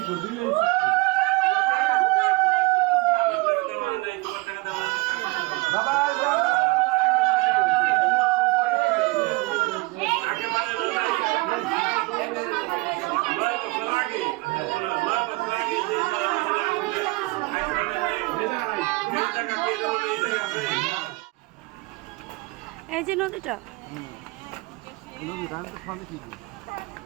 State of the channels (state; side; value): quieter; left; 24.2 dB